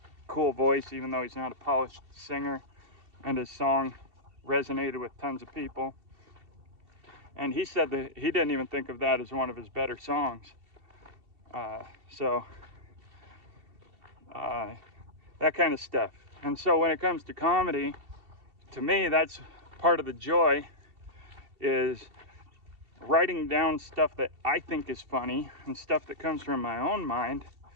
cool voice, even though he's not a polished singer, and his song resonated with tons of people. And he said that he didn't even think of that as one of his better songs. That kind of stuff. And so when it comes to comedy, to me, that's part of the joy, is writing down stuff that I think is funny and stuff that comes from my own mind,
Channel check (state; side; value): late; left; 2.7 ms